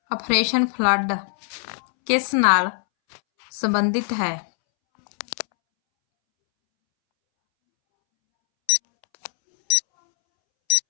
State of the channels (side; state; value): right; silent; 65 dB below the other